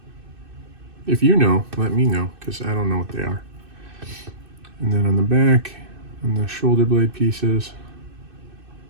If you know, let me know, because I don't know what they are. And then on the back, on the shoulder blade pieces,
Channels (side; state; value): left; late; 2.6 ms